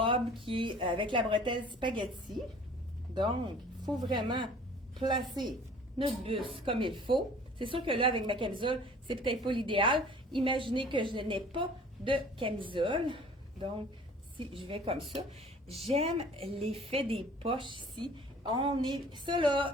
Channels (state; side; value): normal; both; correlation 0.49